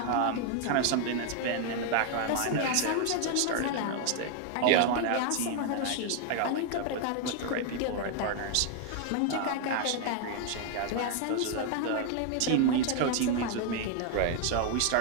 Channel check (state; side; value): different; both; correlation 0.00